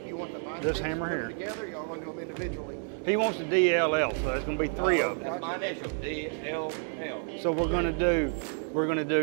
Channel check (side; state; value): left; silent; 58 dB below the other